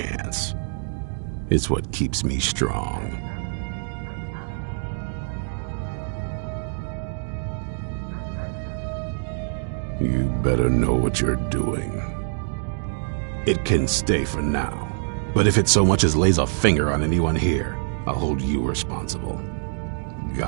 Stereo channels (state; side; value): silent; left; digital silence